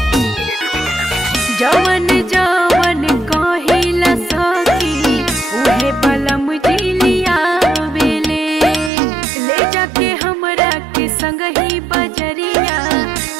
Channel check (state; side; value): drops out; left; at 8.9 s